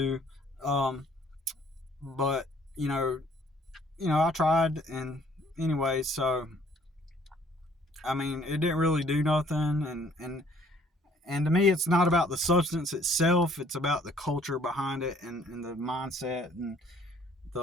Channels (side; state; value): both; normal; correlation 0.59